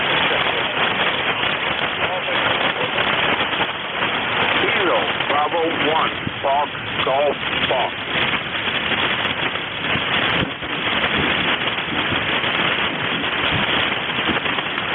Bravo 1, Fox, Golf, Fox.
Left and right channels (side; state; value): both; identical; correlation 1.00